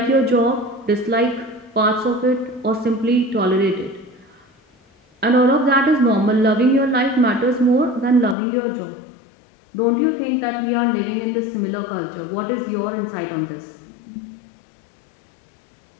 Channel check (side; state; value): right; drops out; at 8.3 s